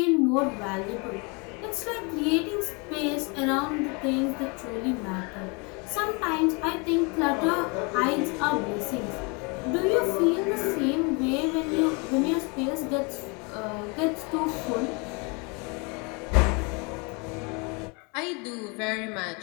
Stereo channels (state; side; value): quieter; right; 31.0 dB